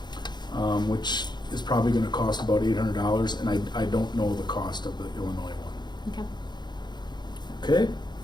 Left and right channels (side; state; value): right; late; 0.21 ms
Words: which is probably going to cost about $800, and I don't know the cost of the Illinois one. Okay. Okay.